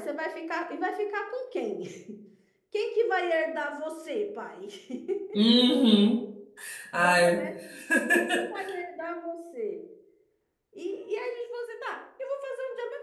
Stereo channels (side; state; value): both; identical; correlation 1.00